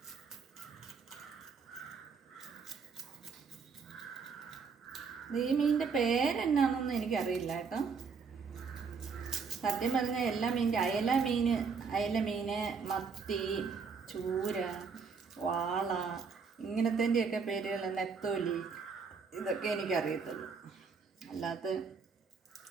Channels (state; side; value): quieter; left; 5.4 dB